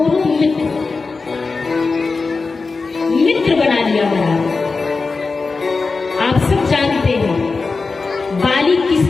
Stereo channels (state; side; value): quieter; right; 4.2 dB